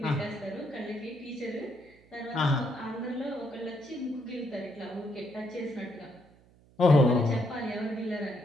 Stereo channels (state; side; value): noise; right; hum, 28 dB below the sound